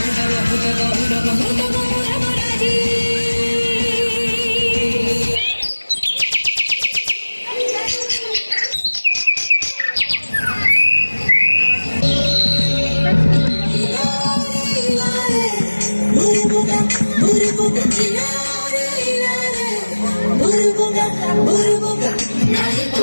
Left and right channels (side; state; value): both; inverted; correlation -1.00